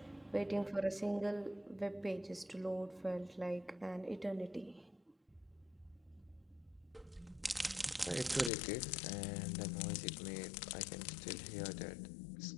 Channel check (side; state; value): right; drops out; at 8.5 s